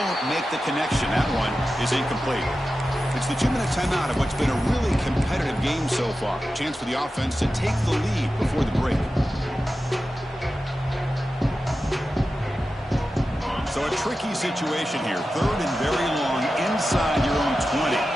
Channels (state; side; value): normal; both; correlation 0.93